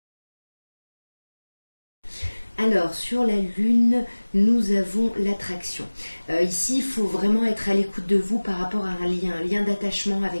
Alors, sur la Lune, nous avons l'attraction. Ici, il faut vraiment être à l'écoute de vous par rapport à un lien d'attachement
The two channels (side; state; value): both; inverted; correlation -1.00